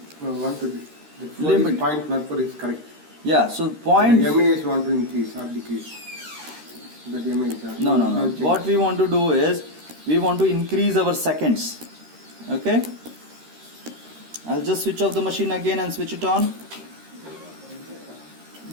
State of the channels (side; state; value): left; late; 13 ms